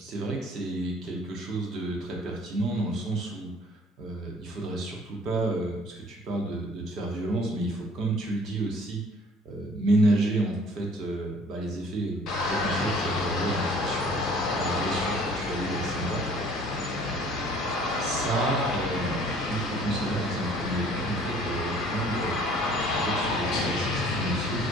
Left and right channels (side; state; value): both; normal; correlation 0.53